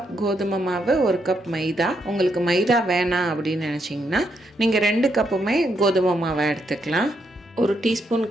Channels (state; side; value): normal; both; correlation 0.78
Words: கோதுமை மாவு, 1 கப் மைதா. உங்களுக்கு மைதா வேணாம் அப்படின்னு நினச்சிங்கன்னா நீங்கள் 2 கப்புமே கோதுமை மாவை எடுத்துக்கலாம். 1 teaspoon